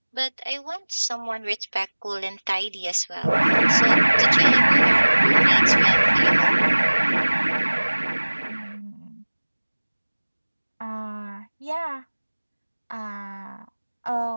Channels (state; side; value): inverted; both; correlation -1.00